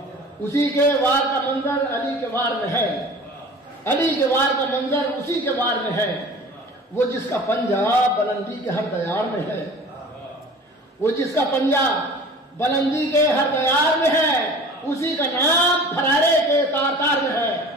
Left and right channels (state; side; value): normal; both; correlation 0.42